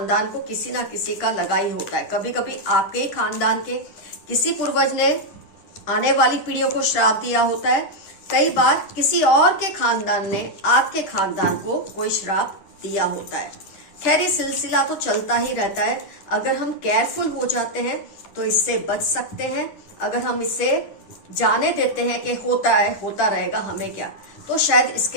को किसी ना किसी का लगा ही होता है। कभी कभी आपके ही खानदान के किसी पूर्वज ने आने वाली पीढ़ियों को श्राप दिया होता है, कई बार किसी और के खानदान ने आपके खानदान को कोई श्राप दिया होता है। खैर, ये सिलसिला तो चलता ही रहता है। अगर हम केयरफुल हो जाते हैं तो इससे बच सकते हैं। अगर हम इसे जाने देते हैं कि होता है, होता रहेगा, हमें क्या, तो शायद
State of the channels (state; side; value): late; right; 10 ms